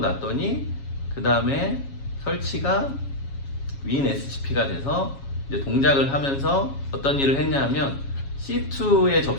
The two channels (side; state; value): right; late; 7.3 ms